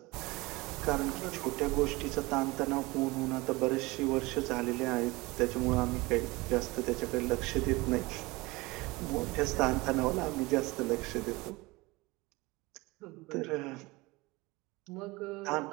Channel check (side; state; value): left; quieter; 22.7 dB